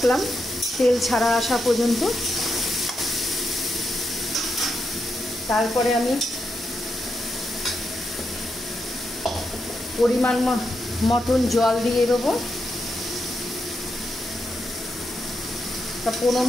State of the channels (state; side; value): normal; both; correlation 0.84